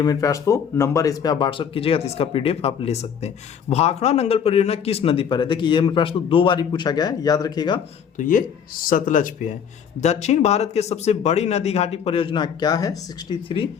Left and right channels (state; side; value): quieter; right; 7.6 dB